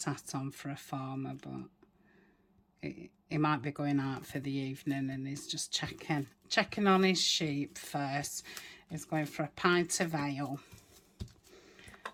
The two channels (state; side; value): identical; both; correlation 1.00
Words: hat on for a farmer, but he might be going out for the evening, and he's just checking on his sheep first. He's going for a pint of ale,